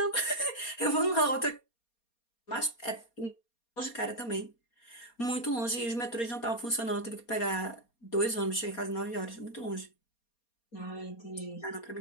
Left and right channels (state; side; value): late; right; 4.3 ms